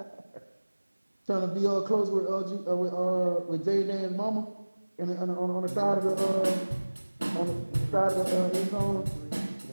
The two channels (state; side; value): inverted; both; correlation -1.00